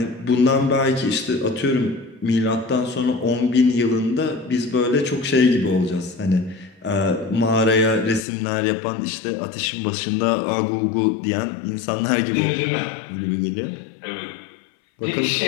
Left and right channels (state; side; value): drops out; right; at 8.2 s